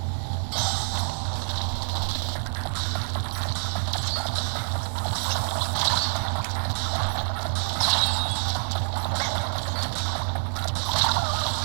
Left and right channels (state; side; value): silent; left; digital silence